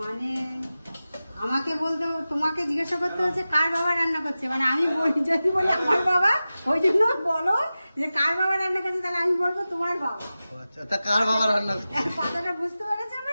আমাকে বলতে, তোমাকে জিজ্ঞাসা করতে হচ্ছে কার বাবা রান্না করছে, মানে আমি যদি বলি আমার বাবা, ওই জন্য বলো যে কার বাবা রান্না করছে, তাহলে আমি বলবো তোমার বাবা। ও আচ্ছা, তা কার বাবা রান্না করছে? কথাটা বুঝতে পেরেছে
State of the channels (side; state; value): both; inverted; correlation -0.95